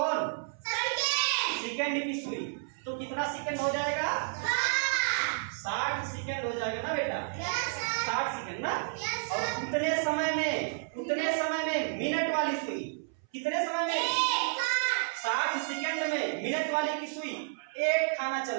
सेकंड की सुई, तो कितना सेकंड हो जाएगा? 60 सेकंड हो जाएगा ना बेटा? 60 सेकंड ना? और उतने समय में मिनट वाली सुई, कितने समय में? 60 सेकंड में मिनट वाली की सुई एक खाना चल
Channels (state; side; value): silent; left; 57 dB below the other